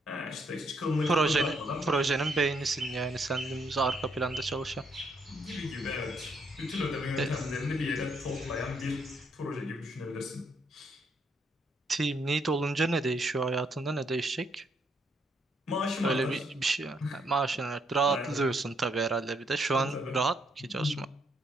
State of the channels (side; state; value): both; normal; correlation 0.72